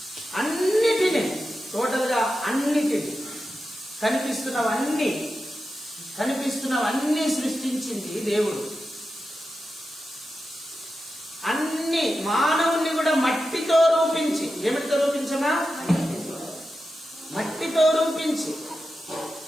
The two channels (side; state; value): both; normal; correlation 0.91